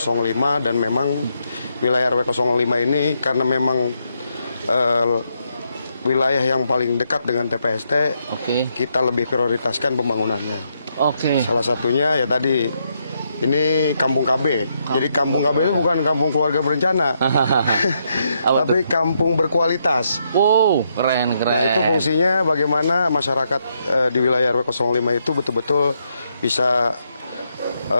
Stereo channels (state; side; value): inverted; both; correlation -0.78